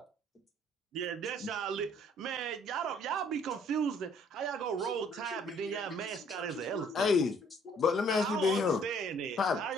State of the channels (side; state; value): both; normal; correlation 0.60